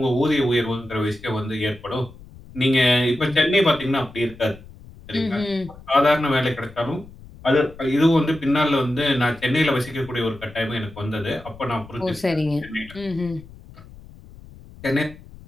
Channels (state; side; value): noise; left; rumble, 19 dB below the sound